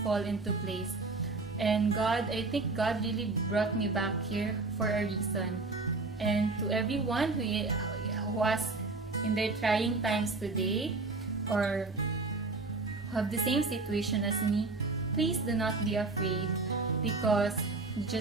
fall into place. And God, I think God really brought me back here for a reason. And to everyone who was in their trying times today, or have the same situation as me, please do not be afraid, because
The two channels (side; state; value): left; quieter; 3.6 dB